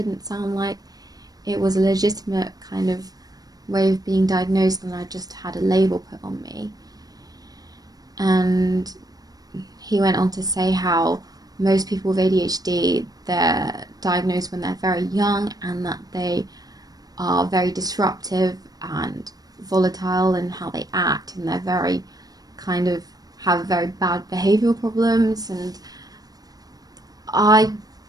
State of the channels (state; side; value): late; left; 0.18 ms